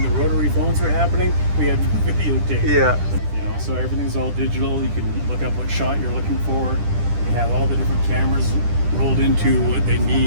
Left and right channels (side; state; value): left; late; 10 ms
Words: the rotary phones were happening, we had videotape. Yeah. You know, so everything's all digital. You can look up what shot you're looking for. You have all the different cameras rolled into what they